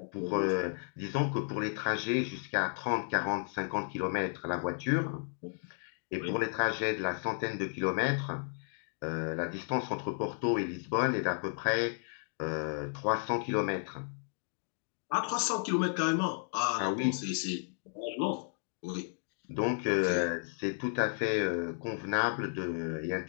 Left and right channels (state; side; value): silent; right; 56 dB below the other